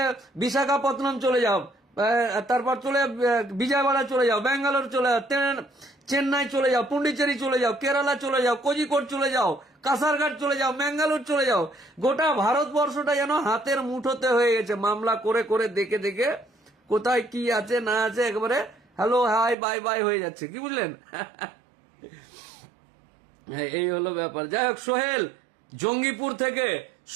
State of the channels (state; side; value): drops out; left; at 19.6 s